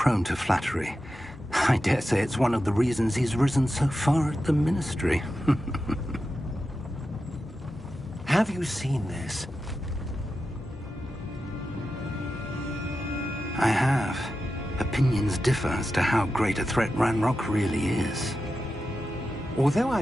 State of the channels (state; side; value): normal; both; correlation 0.91